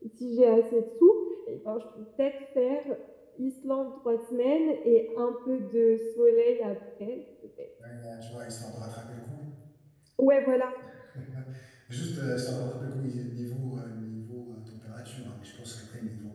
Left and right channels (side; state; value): both; identical; correlation 1.00